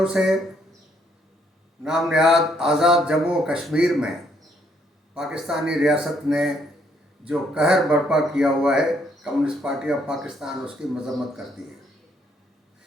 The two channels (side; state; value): both; normal; correlation 0.70